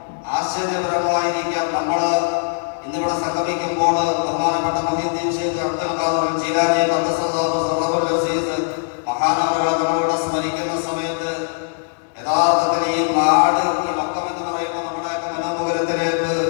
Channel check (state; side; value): silent; right; digital silence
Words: ആശ്ചര്യപരമായിരിക്കാം നമ്മൾ ഇന്നിവിടെ സംഗമിക്കുമ്പോൾ ബഹുമാനപ്പെട്ട മുഹീദ്ദീൻ ശൈഖ് അബ്ദുൽ ഖാദിർ ജീലാനി ഖദ്ദസല്ലാഹു സിർറഹുൽ അസീസ് മഹാനവറുകളെ നമ്മളിവിടെ സ്മരിക്കുന്ന സമയത്ത് യഥാർത്ഥത്തിൽ ഈ നാട് ഈ മക്കം എന്ന് പറയുമ്പോൾ നമ്മുടെയൊക്കെ മനോമുഖരത്തിലേക്ക്